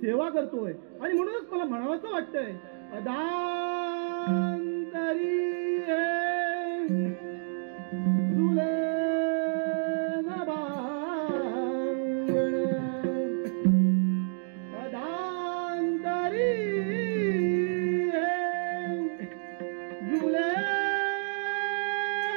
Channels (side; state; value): left; silent; digital silence